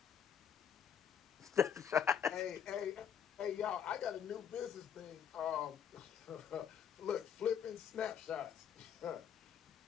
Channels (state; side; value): quieter; right; 8.3 dB